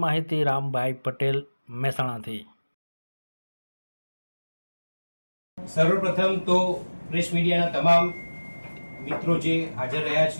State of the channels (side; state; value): both; inverted; correlation -1.00